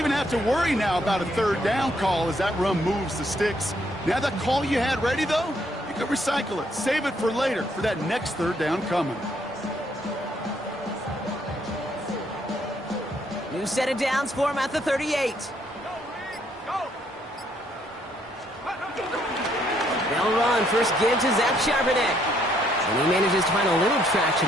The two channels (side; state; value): both; normal; correlation 0.70